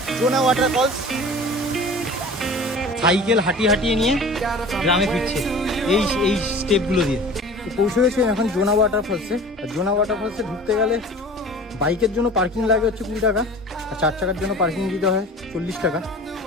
জোনা ওয়াটারফলস সাইকেল হাঁটিয়ে নিয়ে গ্রামে ফিরছে এই স্টেপগুলো দিয়ে। তো পৌঁছে গেছে এখন জোনা ওয়াটারফলসে। আর জোনা ওয়াটারফলসে ঢুকতে গেলে বাইকের জন্য পার্কিং লাগে হচ্ছে 20 টাকা, আর 4 চাকার জন্য পার্কিং দিতে হয় 40 টাকা।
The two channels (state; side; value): normal; both; correlation 0.41